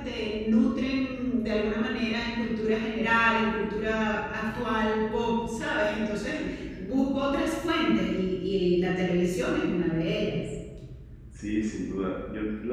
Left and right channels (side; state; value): both; identical; correlation 1.00